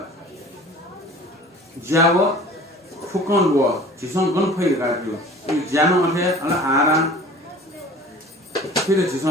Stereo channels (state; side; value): normal; both; correlation 0.44